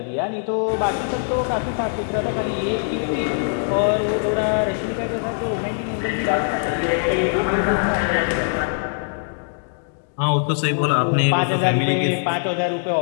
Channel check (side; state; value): right; silent; digital silence